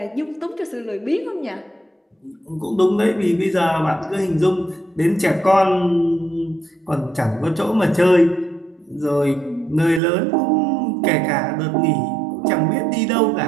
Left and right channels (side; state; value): left; drops out; at 10.0 s